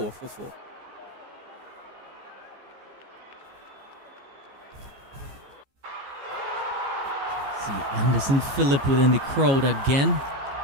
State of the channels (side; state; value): left; late; 15 ms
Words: for 4. See Anderson Phillip within the crowd again.